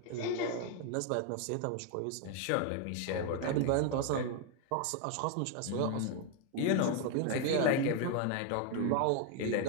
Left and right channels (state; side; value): different; both; correlation 0.01